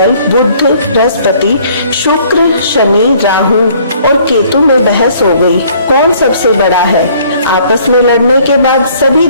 बुध, बृहस्पति, शुक्र, शनि, राहु और केतु में बहस हो गई, कौन सबसे बड़ा है। आपस में लड़ने के बाद सभी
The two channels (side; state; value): both; inverted; correlation -0.59